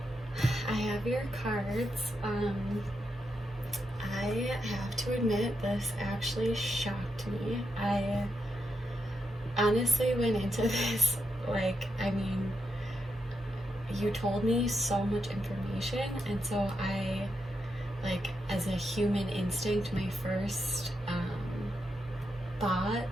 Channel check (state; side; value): normal; both; correlation 0.83